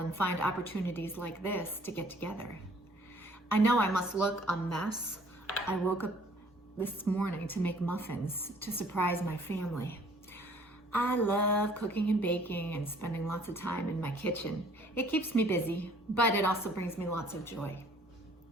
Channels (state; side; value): normal; both; correlation 0.57